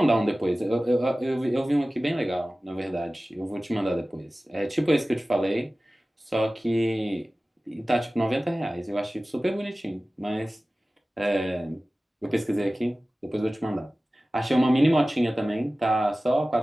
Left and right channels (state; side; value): normal; both; correlation 0.97